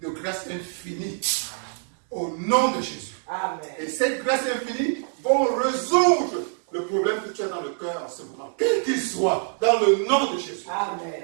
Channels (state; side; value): silent; left; 62 dB below the other